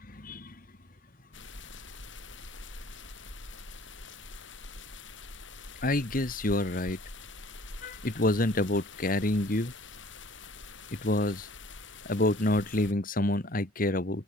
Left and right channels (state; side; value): normal; both; correlation 0.53